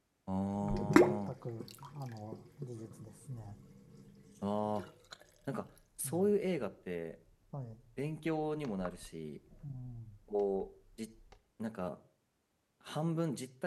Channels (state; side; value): identical; both; correlation 1.00